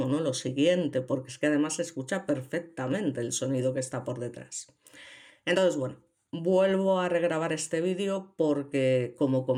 ¿no? Lo siguiente, porque es que además se escucha perfectamente el sonido que está por detrás. Entonces, bueno, vuelvo a regrabar este vídeo porque, como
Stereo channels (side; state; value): both; identical; correlation 1.00